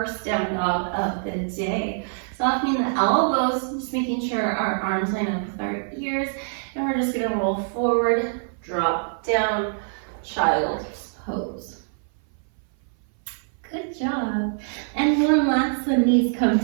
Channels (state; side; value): silent; left; 58 dB below the other